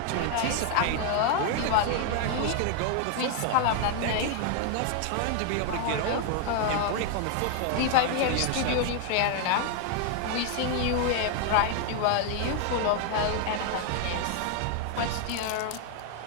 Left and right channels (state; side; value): different; both; correlation 0.00